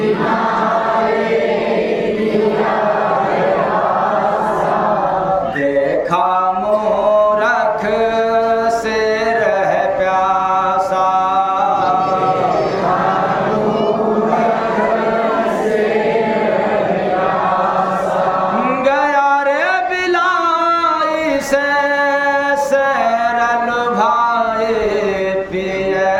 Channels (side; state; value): both; identical; correlation 1.00